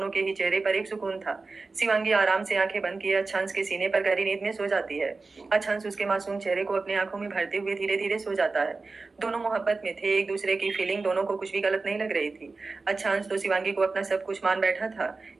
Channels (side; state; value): left; quieter; 3.9 dB